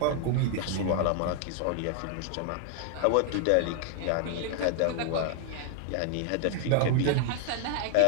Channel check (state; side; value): different; both; correlation 0.00